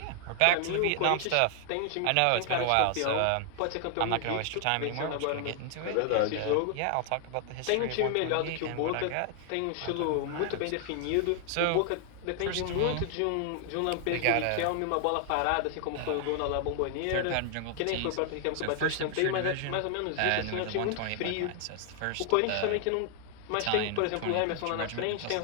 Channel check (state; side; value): different; both; correlation 0.00